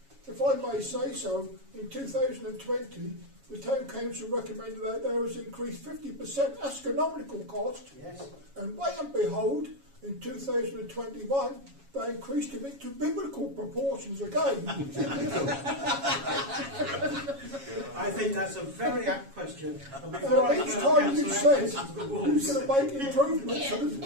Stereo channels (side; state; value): left; late; 7.2 ms